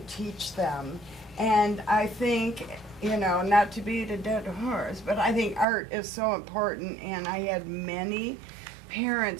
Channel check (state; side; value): drops out; left; at 5.7 s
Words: teach them. And I think, you know, not to beat a dead horse, but I think art is so important. And I had many